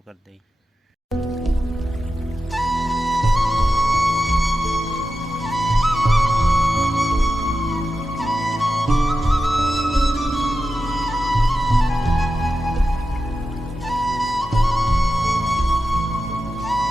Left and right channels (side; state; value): both; normal; correlation 0.91